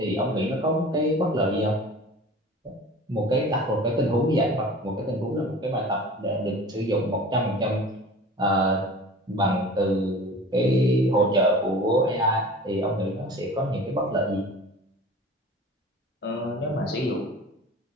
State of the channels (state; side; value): normal; both; correlation 0.40